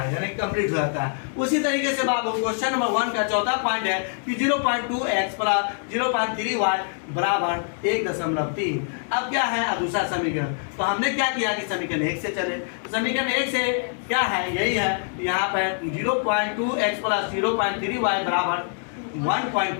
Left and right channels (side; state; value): right; silent; 62 dB below the other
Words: यानी कंप्लीट हो जाता है। उसी तरीके से बाबू क्वेश्चन नंबर 1 का चौथा पॉइंट है कि 0.2x प्लस 0.3y बराबर 1.3। अब क्या है, अब दूसरा समीकरण। तो हमने क्या किया कि समीकरण 1 से चले। तो समीकरण 1 से क्या है, यही है, यहाँ पर 0.2x प्लस 0.3y बराबर